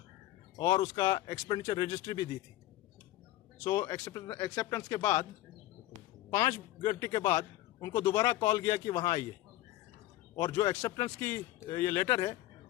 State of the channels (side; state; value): right; quieter; 15.8 dB